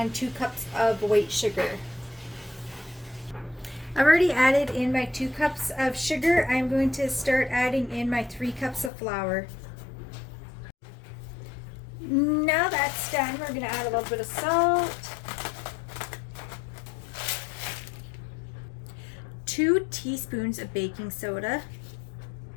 2 cups of white sugar. I've already added in my 2 cups of sugar. I'm going to start adding in my 3 cups of flour. Now that's done, we're going to add a little bit of salt, 2 teaspoons of baking soda,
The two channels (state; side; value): drops out; right; at 8.9 s